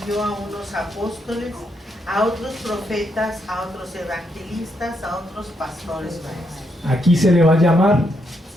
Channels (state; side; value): normal; both; correlation 0.78